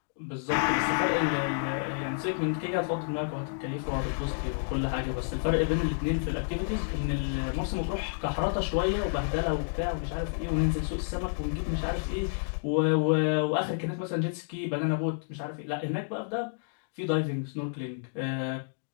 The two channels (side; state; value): right; silent; digital silence